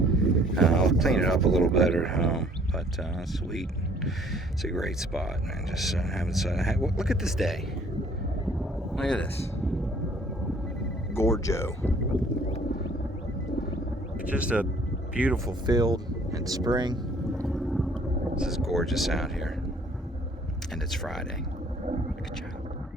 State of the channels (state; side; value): normal; both; correlation 0.58